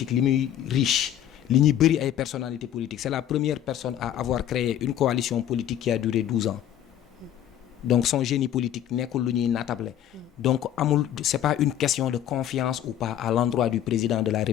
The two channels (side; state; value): right; quieter; 11.0 dB